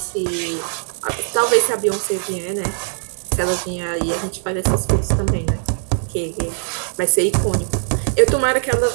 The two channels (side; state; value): left; silent; digital silence